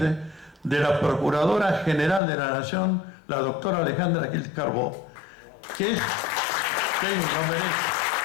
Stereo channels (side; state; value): right; drops out; at 2.2 s